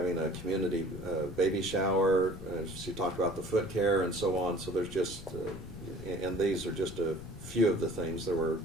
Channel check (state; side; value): noise; left; rumble, 14 dB below the sound